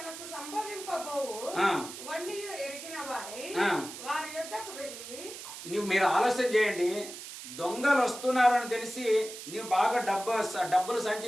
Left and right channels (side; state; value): right; noise; hiss, 11 dB below the sound